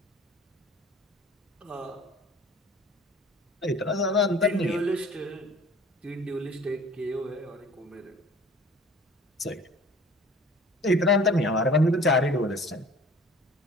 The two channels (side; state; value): both; normal; correlation 0.46